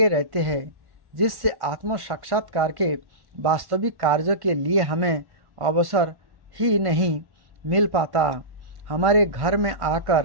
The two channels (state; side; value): late; left; 1.5 ms